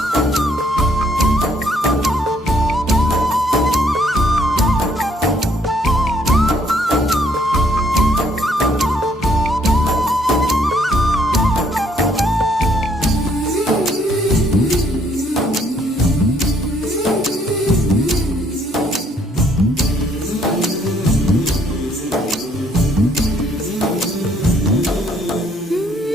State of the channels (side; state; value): both; normal; correlation 0.66